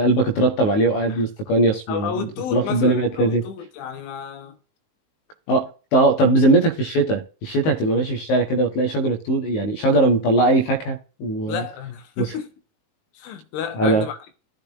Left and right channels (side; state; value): right; late; 19 ms